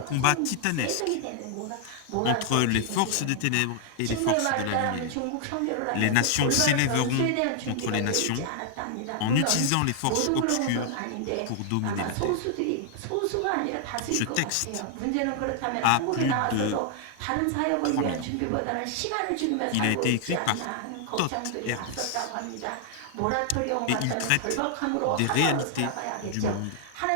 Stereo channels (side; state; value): both; different; correlation 0.00